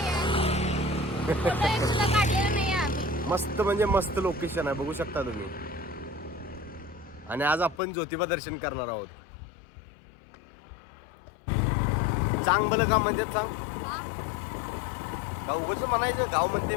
सुद्धा काढलेलं नाही आम्ही. मस्त म्हणजे मस्त लोकेशन आहे, बघू शकता तुम्ही. आणि आज आपण ज्योतिबा दर्शन करणार आहोत. चांग भलं का म्हणजे सांग का उगाच म्हणायचं गाव म्हणते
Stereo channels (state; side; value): drops out; right; at 7.8 s